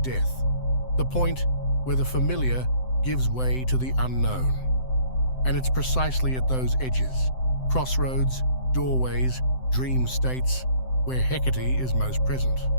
death, the point where the familiar gives way to the unknown. And it's precisely at those edges, crossroads, doorways, dream states, where Hecate is most present.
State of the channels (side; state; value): right; late; 7.8 ms